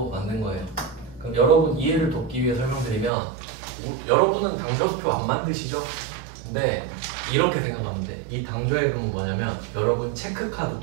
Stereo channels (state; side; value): drops out; left; at 3.1 s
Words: 만든 거예요. 그럼 여러분 이해를 돕기 위해 설명드리면 여러분은 당좌수표 안 만드시죠? 근데 이렇게 생각하면 돼. 이 당좌예금은 뭐냐면 여러분 체크카드